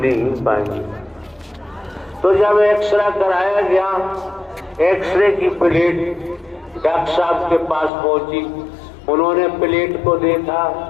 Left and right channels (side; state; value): right; drops out; at 7.9 s